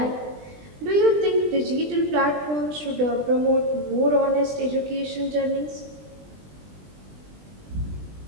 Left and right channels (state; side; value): late; left; 20 ms